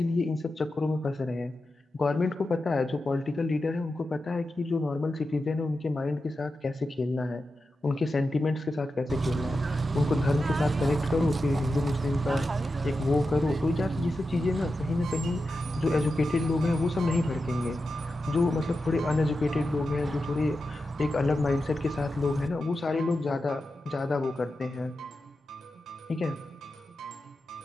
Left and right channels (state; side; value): normal; both; correlation 0.90